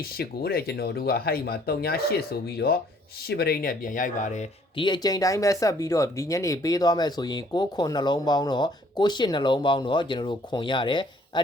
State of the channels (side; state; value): both; normal; correlation 0.61